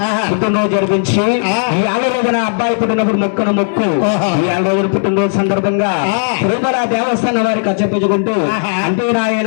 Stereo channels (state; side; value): silent; right; digital silence